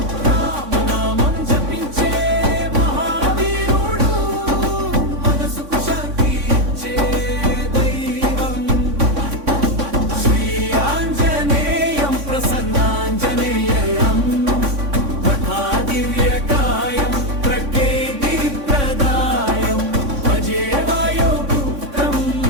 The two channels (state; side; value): late; left; 3.6 ms